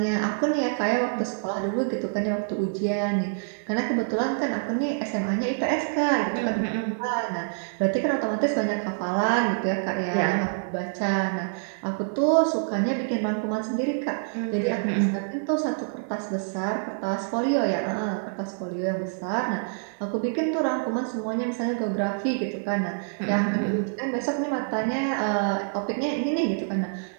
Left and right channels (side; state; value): left; silent; 61 dB below the other